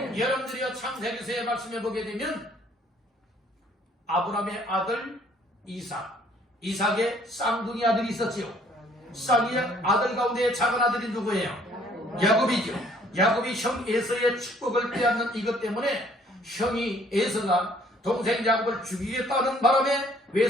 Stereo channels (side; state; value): both; normal; correlation 0.61